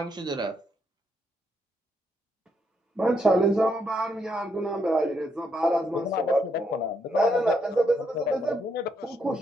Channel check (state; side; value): normal; both; correlation 0.77